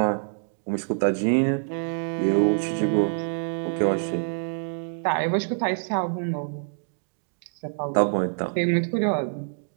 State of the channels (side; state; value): left; silent; digital silence